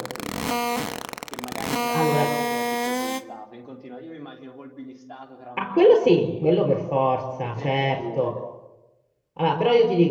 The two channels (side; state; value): both; identical; correlation 1.00